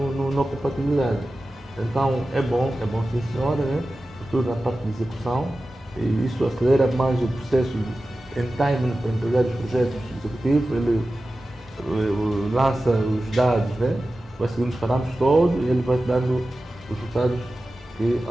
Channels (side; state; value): both; normal; correlation 0.94